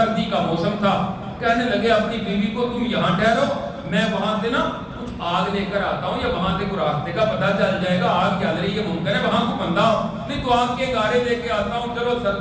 کا موسم تھا۔ کہنے لگے اپنی بیوی کو تم یہاں ٹھہرو، میں وہاں سے نا کچھ آگ لے کر آتا ہوں، یا وہاں سے کوئی راستے کا پتہ چل جائے گا، آگ جل رہی ہے، ممکن ہے وہاں کو بندہ ہو، نہیں تو آگ کے گارے لے کے آتا ہوں، چلو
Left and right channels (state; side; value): identical; both; correlation 1.00